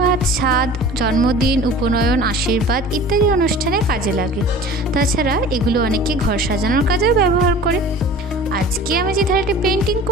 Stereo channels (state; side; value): normal; both; correlation 0.42